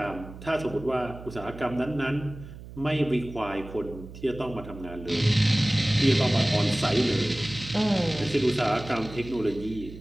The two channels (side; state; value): right; noise; hum, 15 dB below the sound